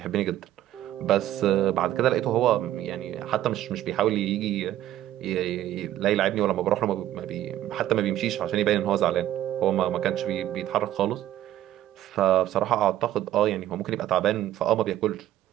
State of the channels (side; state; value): left; quieter; 13.0 dB